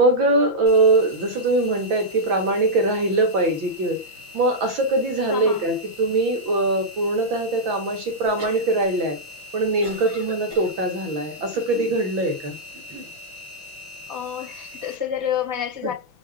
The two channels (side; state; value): left; late; 5.9 ms